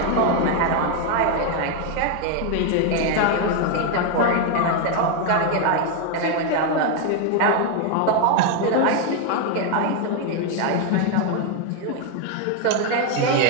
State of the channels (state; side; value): different; both; correlation 0.01